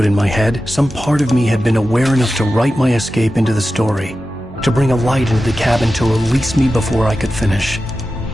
in my head, some part of me had been aware enough to write my escape into the story, to bring a light into the cabin to release me before I could finish,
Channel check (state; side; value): normal; both; correlation 0.93